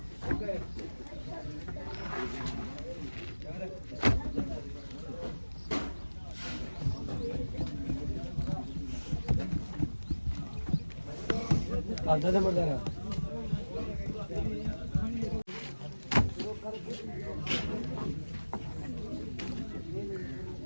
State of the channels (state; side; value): inverted; both; correlation -1.00